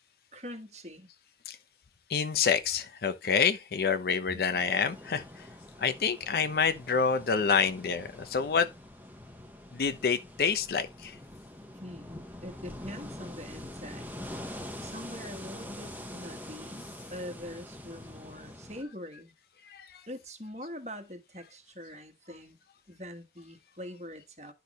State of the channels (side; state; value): right; quieter; 5.4 dB